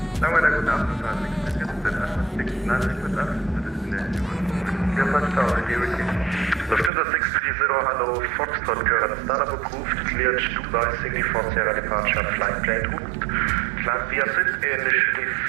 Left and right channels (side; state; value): left; drops out; at 6.9 s